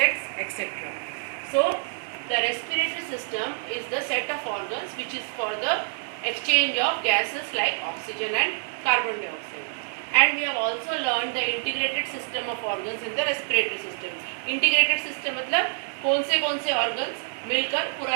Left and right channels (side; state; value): left; silent; digital silence